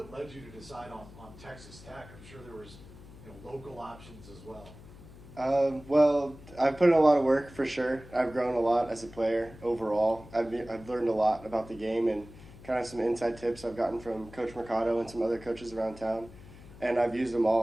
led you to decide on Texas Tech? I'm sure there was local options as well. Well, I've put in a lot of work for sure. I've grown a lot as a player overall. I've learned a lot about the game and kind of some inside tips I've gotten from Coach Mercado and some other coaches around town. And I've used them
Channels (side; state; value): left; noise; hum, 19 dB below the sound